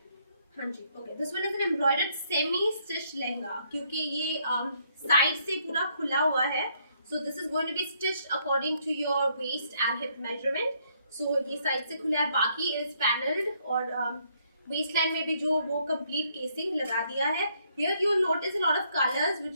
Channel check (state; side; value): inverted; both; correlation -0.70